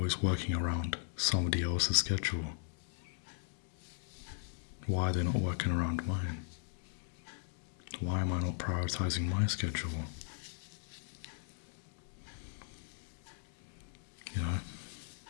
working around somebody else's schedule? Why are they not working around mine? Why am I not prioritizing my schedule?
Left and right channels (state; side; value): silent; right; digital silence